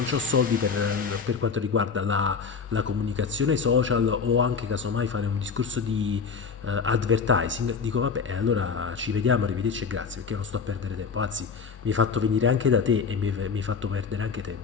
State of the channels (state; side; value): quieter; right; 5.7 dB